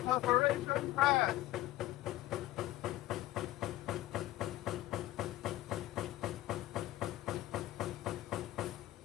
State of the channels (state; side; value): quieter; right; 16.0 dB